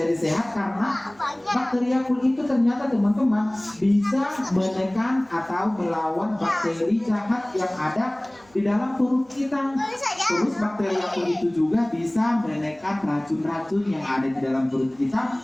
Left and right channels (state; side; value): noise; right; hum, 30 dB below the sound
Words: sehat? Karena bakteri Yakult itu ternyata teman-teman bisa menekan atau melawan bakteri jahat yang ada di dalam perut kita. Terus bakteri Yakult itu juga bisa menekan racun-racun yang ada di dalam perut kita.